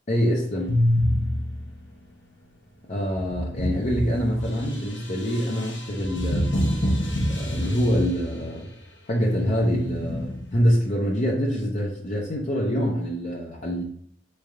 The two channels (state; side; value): normal; both; correlation 0.84